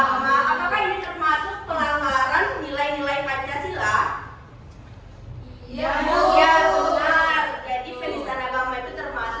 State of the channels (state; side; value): identical; both; correlation 1.00